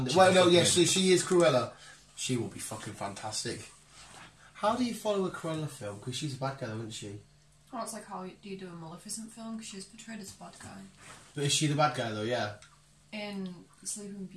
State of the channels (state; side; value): identical; both; correlation 1.00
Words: Well, no, yes, she is Cruella. She will be fucking fantastic. How do you follow a Cruella film? Because she's a bad guy, isn't she? Oh, it's like how do you do a Maleficent film? Because she's portrayed as a bad guy. But is she the bad guy though? Yeah. In Sleeping